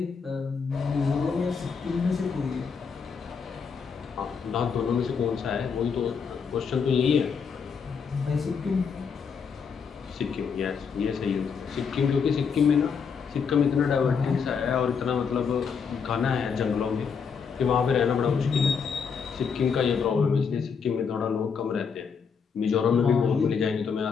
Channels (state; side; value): quieter; right; 6.1 dB